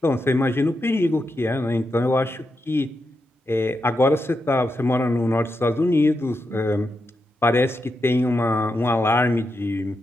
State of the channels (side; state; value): both; normal; correlation 0.86